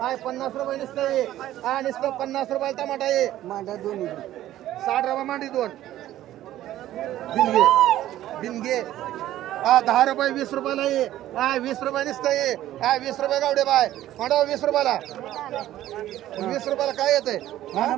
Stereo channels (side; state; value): left; quieter; 13.5 dB